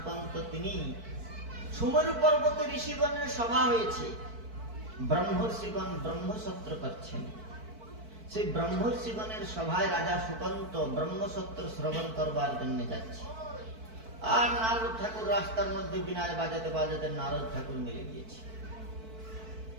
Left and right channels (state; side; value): late; left; 4.5 ms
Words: তিনি সুমেরু পর্বতে ঋষিগণের সভা হয়েছে, ব্রহ্মর্ষিগণ ব্রহ্মসত্র করছেন। সেই ব্রহ্মর্ষিগণের সভায় রাজা সুকান্ত ব্রহ্মসত্র শ্রবণ করবার জন্য যাচ্ছে, আর নারদ ঠাকুর রাস্তার মধ্যে বিনায় বাজাতে বাজাতে নারদ ঠাকুর মিলে গিয়েছে।